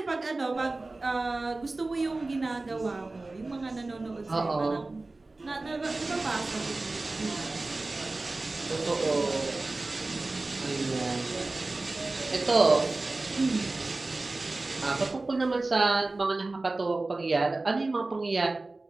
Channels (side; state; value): left; quieter; 3.2 dB